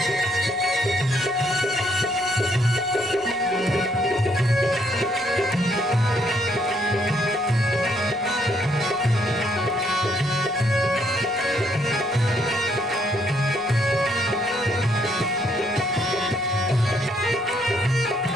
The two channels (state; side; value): noise; right; rumble, 29 dB below the sound